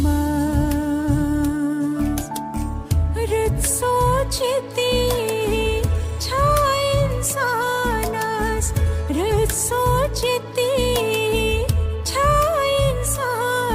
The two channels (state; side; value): identical; both; correlation 1.00